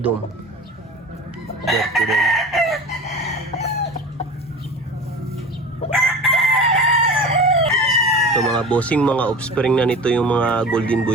Dom. Dirty dom. Ito mga bossing, mga offspring na nito yung mga golden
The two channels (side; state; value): both; normal; correlation 0.34